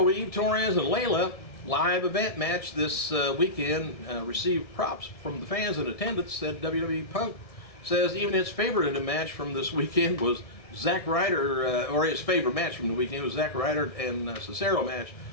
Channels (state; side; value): late; right; 1.6 ms